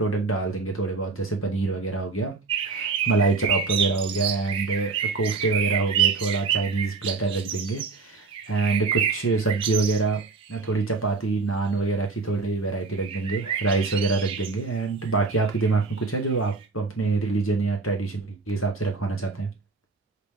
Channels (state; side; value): quieter; left; 4.1 dB